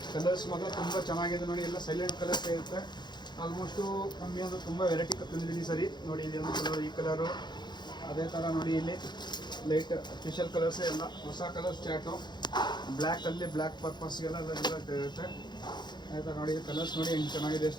ಕಲರ್ಸ್ ಮಾತ್ರ ತುಂಬ ಚೆನ್ನಾಗಿದೆ ನೋಡಿ. ಎಲ್ಲ ಸೈಲೆಂಟ್ ಕಲರ್ಸ್ ಇರುತ್ತೆ. ಆಲ್ಮೋಸ್ಟು ಕಮ್ಮಿ ಅಂದರೆ ತುಂಬ ವೆರೈಟಿ ತಂದಿದ್ದೀನಿ ಸರಿ ನೋಡಿ. ಇಲ್ಲಿ ಒಂದು ಕಲರ್, ಈ ಕಲರು, ಅದೇ ಥರ ನೋಡಿ ಇಲ್ಲಿ ಲೈಟ್ ಸ್ಪೆಷಲ್ ಕಲರ್ಸ್ ಎಲ್ಲ ಹೊಸ ಕಲರ್ಸ್ ಚಾಟು. ಬ್ಲ್ಯಾಕಲ್ಲಿ ಬ್ಲ್ಯಾಕ್ ಪರ್ಪಸ್ಗೆಲ್ಲ ಇರುತ್ತೆ. ಆಯಿತಾ ನೋಡಿ ಕಲರ್ಸ್ ನೋಡಿ ಹೆಂಗೆ ಚೆನ್ನಾಗಿದೆ,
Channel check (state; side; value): late; right; 0.21 ms